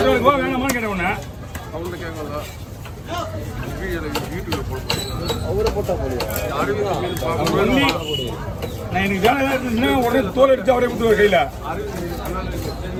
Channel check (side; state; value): both; identical; correlation 1.00